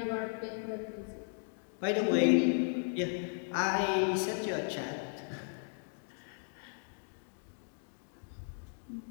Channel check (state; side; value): silent; right; digital silence